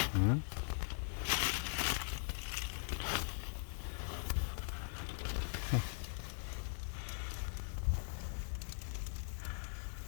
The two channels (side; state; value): right; silent; 50 dB below the other